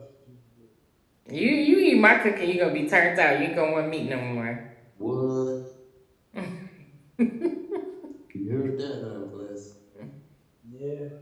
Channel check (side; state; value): both; identical; correlation 1.00